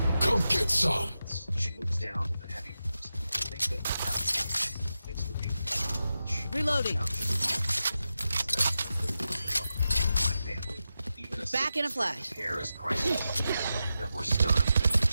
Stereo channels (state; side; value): inverted; both; correlation -0.90